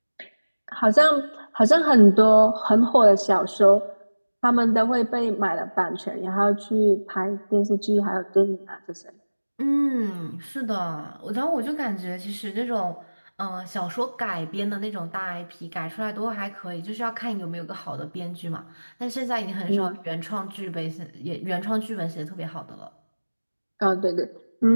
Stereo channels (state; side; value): inverted; both; correlation -1.00